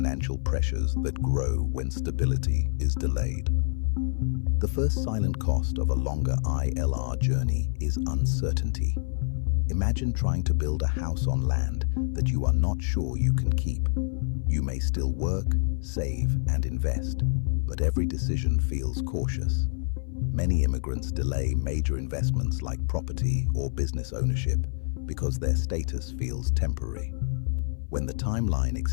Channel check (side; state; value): right; silent; 56 dB below the other